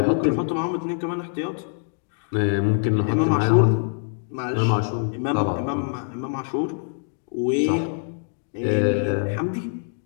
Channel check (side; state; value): right; silent; 63 dB below the other